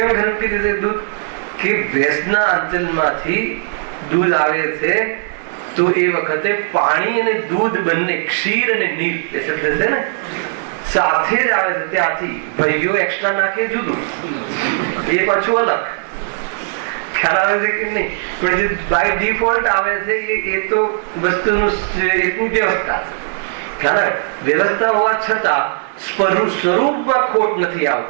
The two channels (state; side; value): silent; left; 57 dB below the other